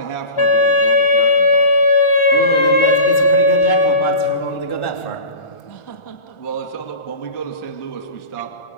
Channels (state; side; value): late; right; 1.4 ms